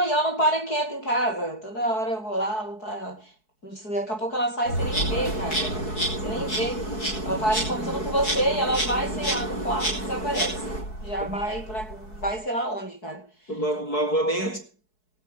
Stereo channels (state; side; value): late; right; 4.7 ms